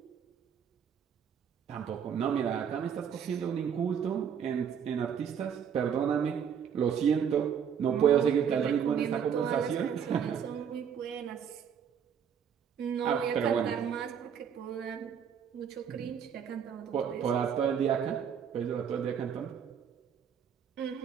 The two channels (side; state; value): left; quieter; 7.9 dB